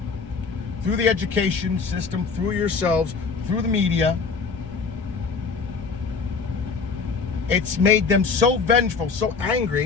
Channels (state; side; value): quieter; right; 5.0 dB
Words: through the education system, through yourselves, through the media. It's made them so vengeful, so